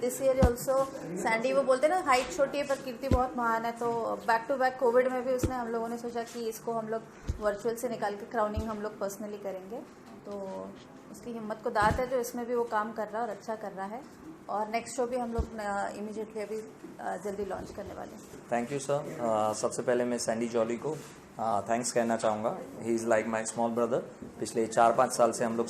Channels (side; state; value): both; identical; correlation 1.00